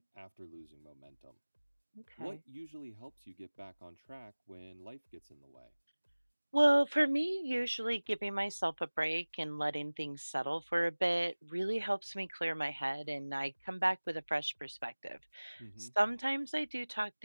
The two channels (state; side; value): inverted; both; correlation -1.00